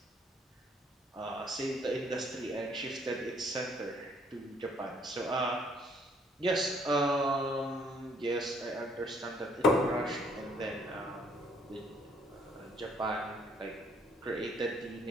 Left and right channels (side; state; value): both; normal; correlation 0.64